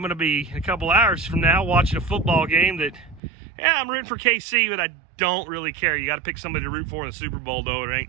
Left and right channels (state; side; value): drops out; left; at 3.2 s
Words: going to be a couple hours from now watching a football game that, yeah, I'm rooting for KC, but I don't really care. You got to pick somebody to root for in the Super Bowl, though. It